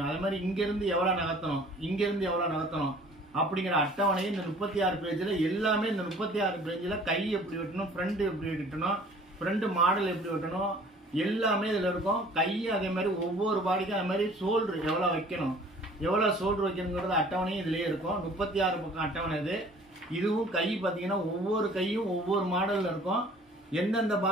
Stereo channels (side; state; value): both; normal; correlation 0.51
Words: அதே மாதிரி இங்கிருந்து எவ்வளவு நகர்த்தணும், இங்கிருந்து எவ்வளவு நகர்த்தணும் அப்படிங்கிற அட்டவணையை இந்த 36 பேஜ்ல எல்லாமே, இந்த 36 பேஜ்ல கை எப்படி வெட்டணும், ஃப்ரண்ட் எப்படி வெட்டணும், ஃப்ரண்ட் மாடல் எப்படி வெட்டணும் எல்லாமே இதுல இருக்கும். கை அதே மாதிரி ஒவ்வொரு பாடிக்கும் அதே மாதிரி ஷோல்டர் எவ்வளவு வைக்கணும், எவ்வளவு ஷோல்டர் வைக்கணுங்கிறது அட்டவணையும் இதுலயே இருக்கும். 36 பக்கம் அட்டவணை இது. இதுவும் கை பாத்தீங்கன்னா ஒவ்வொரு கையும் ஒவ்வொரு மாடல்ல இருக்கும். எந்தெந்த